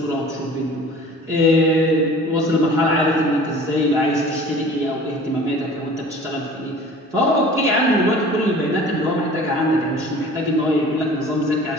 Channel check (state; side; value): normal; both; correlation 0.45